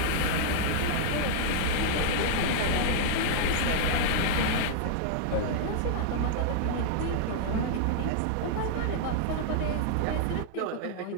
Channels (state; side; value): different; both; correlation -0.01